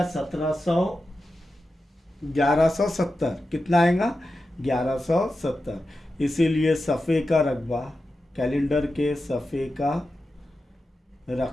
1170। कितना आएगा, 1170। इसीलिए सफ़े का रकबा, कैलेंडर के सफ़े का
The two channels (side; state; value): both; normal; correlation 0.91